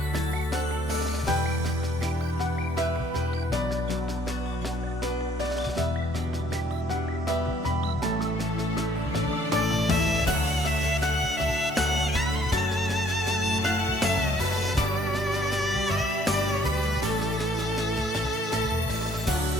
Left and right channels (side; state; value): both; normal; correlation 0.62